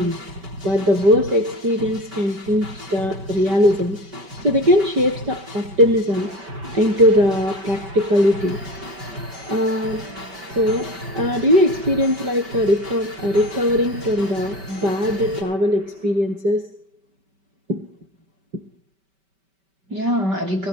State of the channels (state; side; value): late; left; 5.2 ms